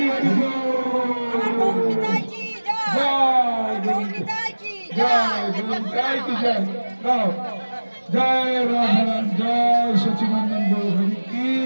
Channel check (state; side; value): inverted; both; correlation -1.00